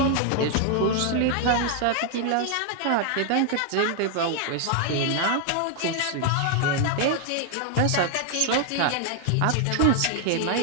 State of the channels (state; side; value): different; both; correlation 0.00